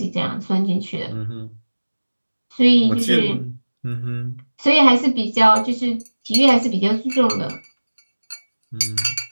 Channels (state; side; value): inverted; both; correlation -1.00